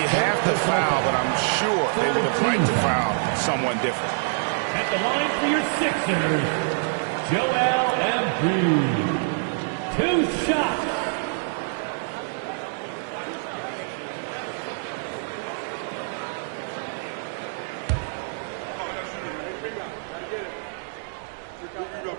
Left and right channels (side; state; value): left; silent; digital silence